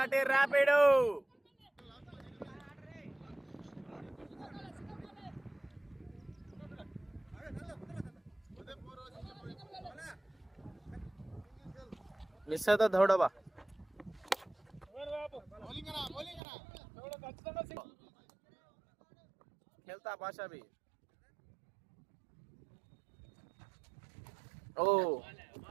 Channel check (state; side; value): drops out; left; at 16.4 s